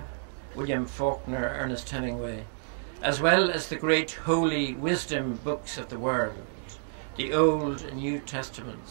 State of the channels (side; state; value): left; silent; digital silence